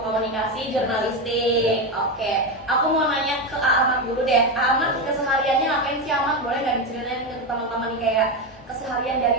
Komunikasi Jurnalistik. Oke, aku mau nanya ke Ahmad dulu deh. Ahmad kesehariannya ngapain sih Ahmad? Boleh nggak diceritain ke teman-teman nih kayak keseharian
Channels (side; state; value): both; normal; correlation 0.13